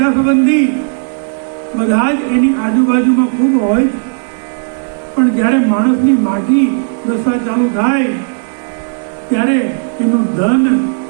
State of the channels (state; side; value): silent; left; digital silence